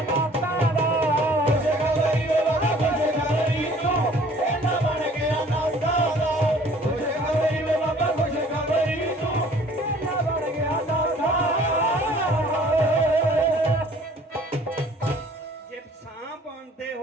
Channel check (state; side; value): normal; both; correlation 0.53